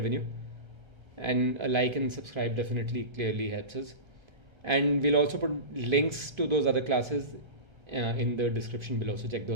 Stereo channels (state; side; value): late; left; 1.3 ms